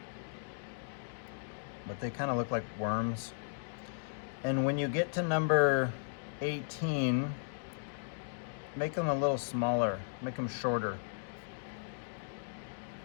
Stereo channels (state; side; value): silent; right; digital silence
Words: But they kind of look like worms. And when you get to number 18, make them a little smaller, make them shorter.